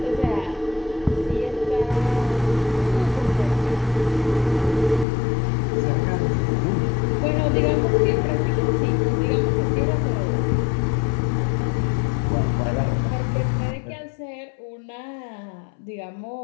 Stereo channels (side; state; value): right; drops out; at 5.1 s